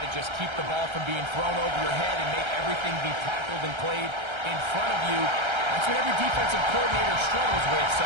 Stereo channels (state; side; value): late; left; 1.3 ms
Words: just keep the ball from being thrown over your head and make everything be tackled and played in front of you? That's what every defensive coordinator struggles with, so